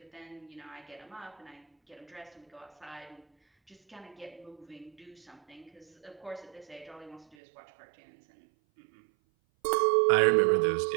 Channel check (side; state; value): left; drops out; at 7.4 s